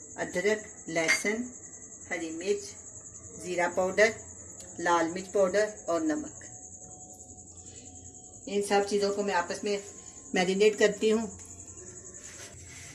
अदरक, लहसुन, हरी मिर्च, ज़ीरा पाउडर, लाल मिर्च पाउडर और नमक। इन सब चीज़ों को मैं आपस में मैरिनेट करती हूँ।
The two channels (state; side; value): identical; both; correlation 1.00